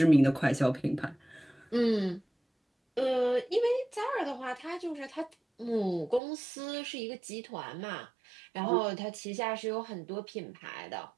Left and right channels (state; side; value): drops out; left; at 6.2 s